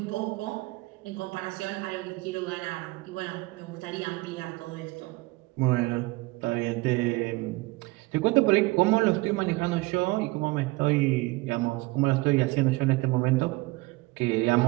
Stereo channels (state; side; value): quieter; left; 22.4 dB